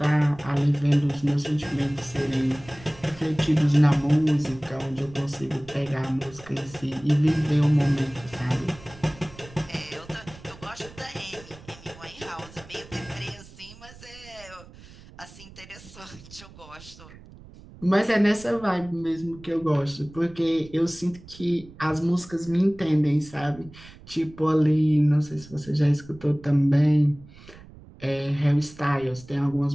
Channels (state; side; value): noise; right; rumble, 20 dB below the sound